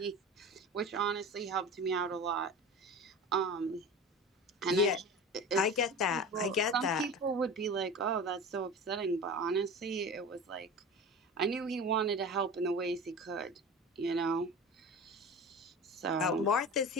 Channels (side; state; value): both; normal; correlation 0.33